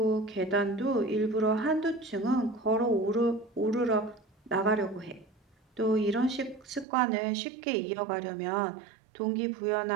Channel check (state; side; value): drops out; left; at 6.9 s